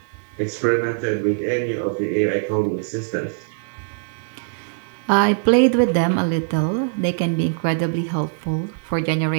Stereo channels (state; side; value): silent; left; digital silence